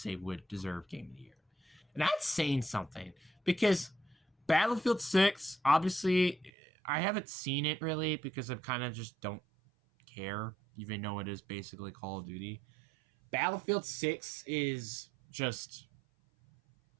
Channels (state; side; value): drops out; left; at 6.5 s